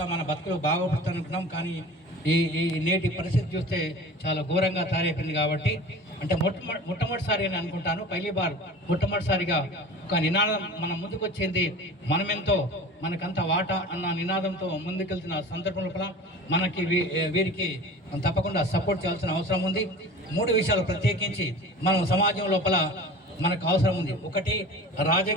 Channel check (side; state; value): both; normal; correlation 0.38